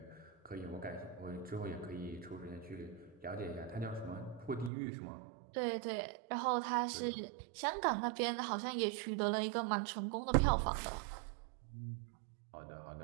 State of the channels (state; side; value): drops out; left; at 4.7 s